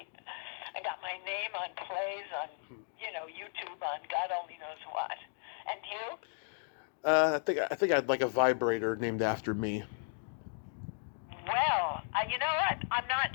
I got my name on plays, on, YouTube, on God only knows what. And you? I think I'd like a vibrator named after me. Well, you know what? I'm not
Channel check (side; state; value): right; silent; digital silence